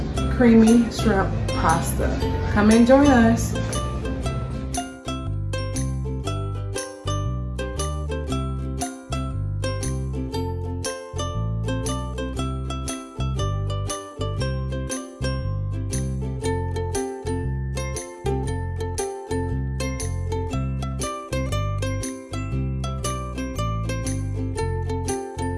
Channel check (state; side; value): identical; both; correlation 1.00